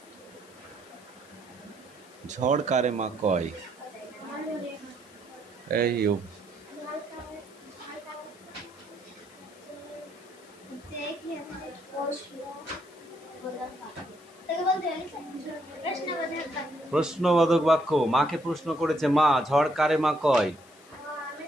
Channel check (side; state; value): left; noise; hiss, 25 dB below the sound